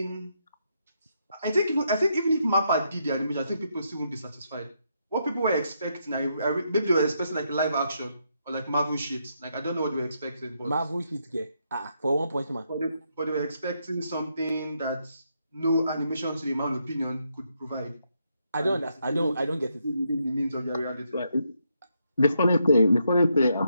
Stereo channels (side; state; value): both; inverted; correlation -0.79